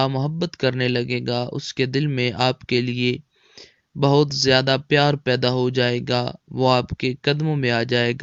محبت کرنے لگے گا، اس کے دل میں آپ کے لیے بہت زیادہ پیار پیدا ہو جائے گا، وہ آپ کے قدموں میں آ جائے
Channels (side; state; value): both; identical; correlation 1.00